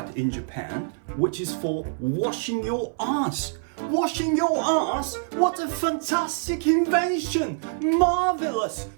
in Japan, which is for washing your ass.Washing your ass? What a fantastic invention! Marvelous!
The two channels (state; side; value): silent; left; 58 dB below the other